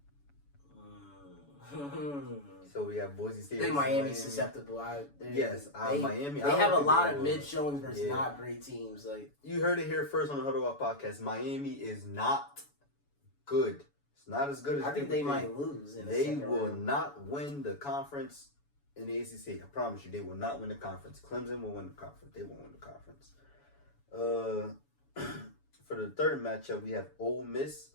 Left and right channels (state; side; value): late; right; 7.0 ms